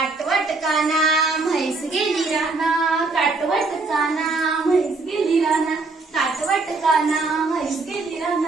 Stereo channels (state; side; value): quieter; left; 3.7 dB